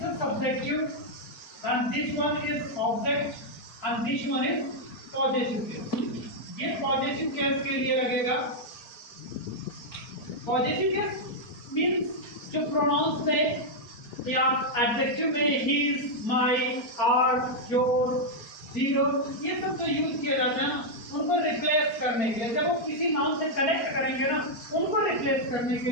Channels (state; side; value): late; right; 4.3 ms